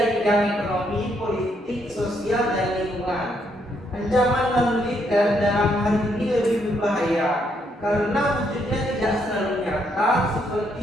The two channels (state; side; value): normal; both; correlation 0.74